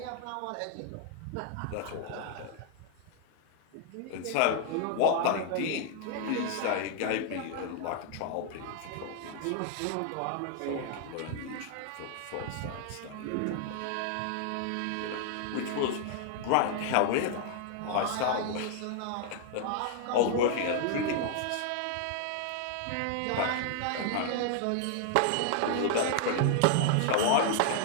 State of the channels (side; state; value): both; different; correlation -0.01